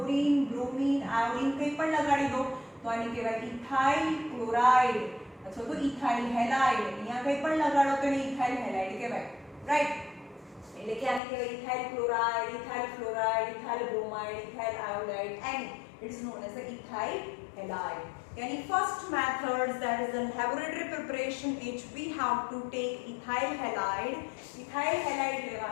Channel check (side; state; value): right; drops out; at 11.2 s